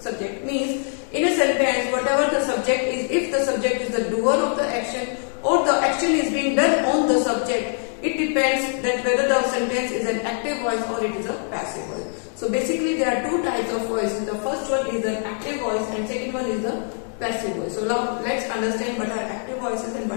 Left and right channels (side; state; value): right; silent; 56 dB below the other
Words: subject. Means in a sentence, whatever the subject is, if the subject is the doer of the action or the action is being done on the subject, it depends that whether the sentence is an active voice or it is a passive voice. So basically there are two types of voices. The first one is an active voice and second one is the passive voice. So now let's understand what are active voices and